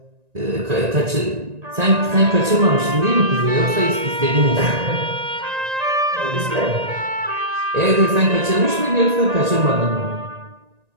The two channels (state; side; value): late; left; 1.9 ms